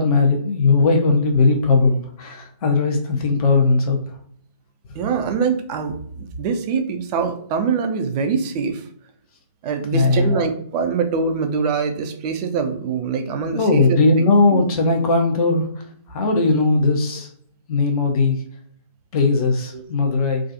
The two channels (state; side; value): inverted; both; correlation -0.56